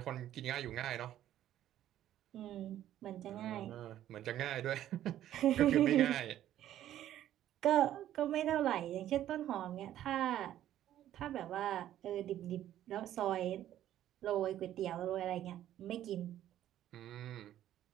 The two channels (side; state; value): left; quieter; 12.2 dB